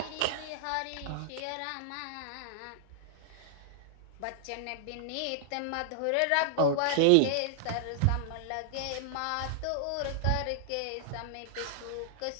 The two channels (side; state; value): both; different; correlation -0.01